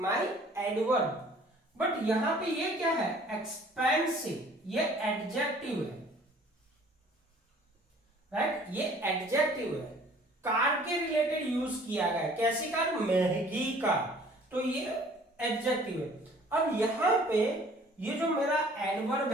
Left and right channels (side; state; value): both; normal; correlation 0.53